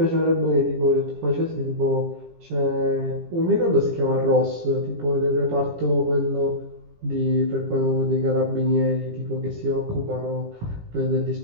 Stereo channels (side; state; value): left; late; 17 ms